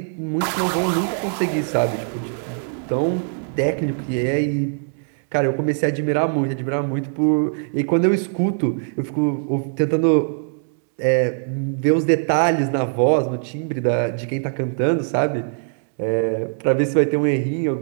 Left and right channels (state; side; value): silent; left; digital silence